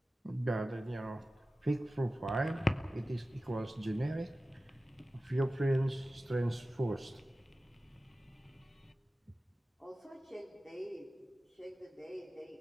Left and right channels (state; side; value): normal; both; correlation 0.96